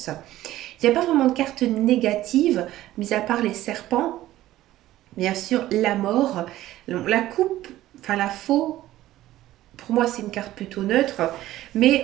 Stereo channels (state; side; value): quieter; left; 14.8 dB